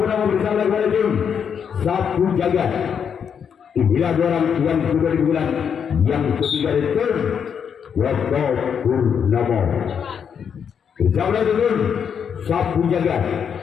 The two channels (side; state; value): right; quieter; 7.4 dB